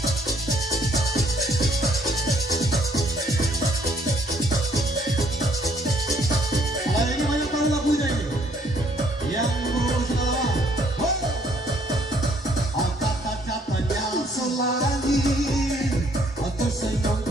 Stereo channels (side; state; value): both; normal; correlation 0.64